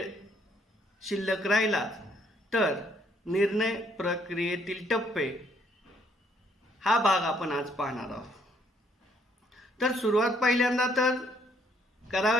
शिल्लक राहिला तर निर्णय प्रक्रियेतील टप्पे हा भाग आपण आज पाहणार आहोत. तर सुरुवात पहिल्यांदा तर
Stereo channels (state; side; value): normal; both; correlation 0.67